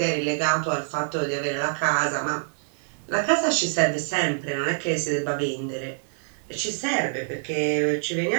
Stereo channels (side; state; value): left; silent; digital silence